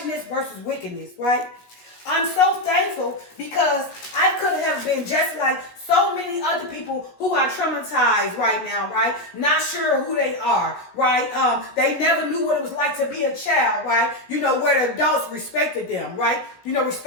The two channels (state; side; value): late; right; 17 ms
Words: versus wickedness, right? I'm so thankful because I could have been just like so many other people who are traumatized right now, right? Not sure who they are, right? They never knew what it was like to be a child, right? Where the adults respected them, right?